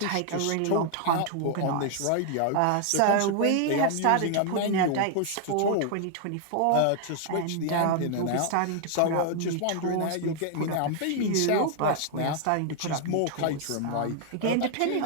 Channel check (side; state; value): both; different; correlation 0.00